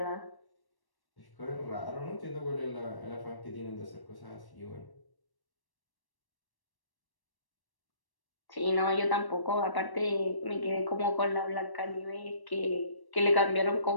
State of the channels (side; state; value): right; late; 1.1 ms